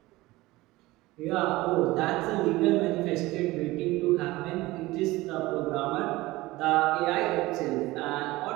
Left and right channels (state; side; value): quieter; left; 19.4 dB